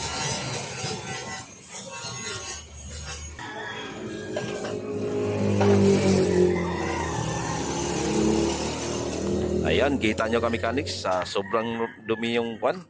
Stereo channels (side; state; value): both; identical; correlation 1.00